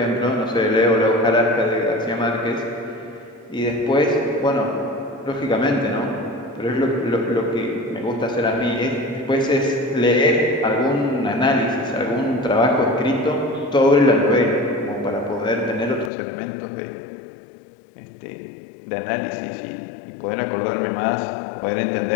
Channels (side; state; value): right; drops out; at 16.1 s